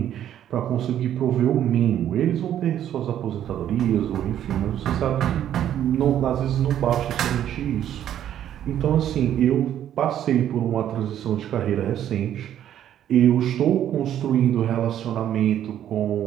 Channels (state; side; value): quieter; left; 10.8 dB